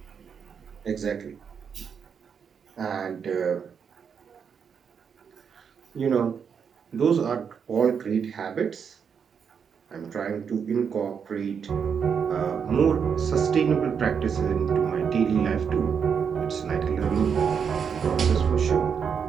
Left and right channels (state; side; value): quieter; left; 6.9 dB